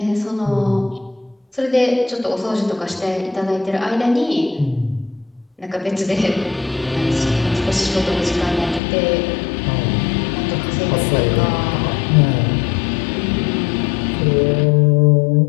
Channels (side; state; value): right; drops out; at 8.8 s